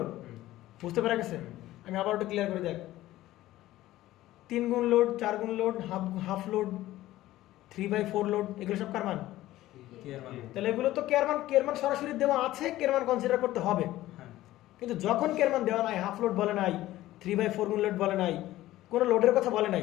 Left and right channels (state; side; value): quieter; right; 15.6 dB